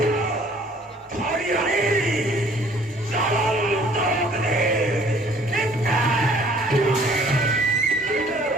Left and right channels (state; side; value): normal; both; correlation 0.57